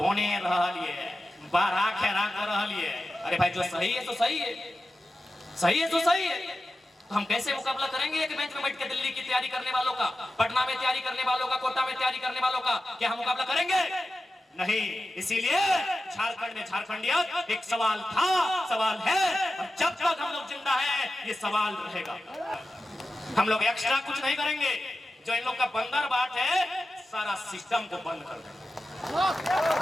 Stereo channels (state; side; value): normal; both; correlation 0.93